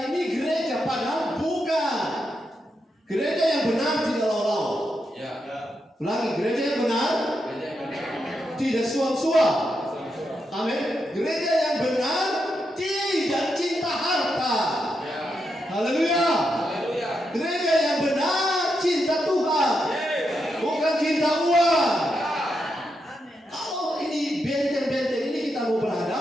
ini gereja, padahal bukan. Gereja yang benar tidak lawan-lawan. Ya. Ulangi, gereja yang benar tidak suam-suam. Amin. Gereja yang benar tidak cinta harta. Haleluya. Gereja yang benar cinta Tuhan, bukan cinta uang. Kalau ini benteng-benteng ini kita mau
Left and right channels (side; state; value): both; normal; correlation 0.84